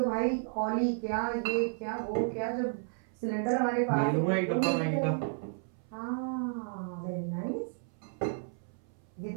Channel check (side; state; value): left; silent; 56 dB below the other